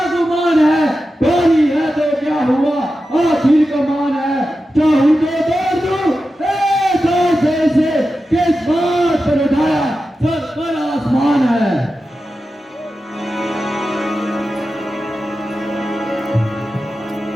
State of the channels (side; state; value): both; normal; correlation 0.92